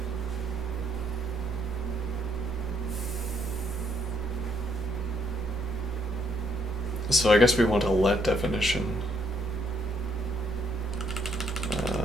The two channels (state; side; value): normal; both; correlation 0.71